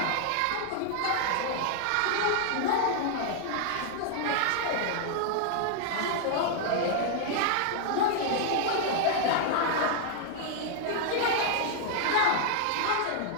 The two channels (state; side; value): different; both; correlation 0.00